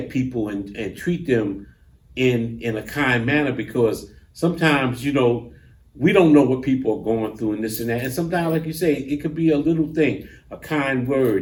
people and treat them in a kind manner, because sometimes, we don't know what people are going through and this and that. And sometimes, like you say, it could be a little thing, a kind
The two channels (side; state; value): both; identical; correlation 1.00